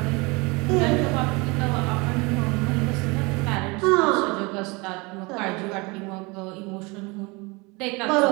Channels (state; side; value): quieter; left; 26.6 dB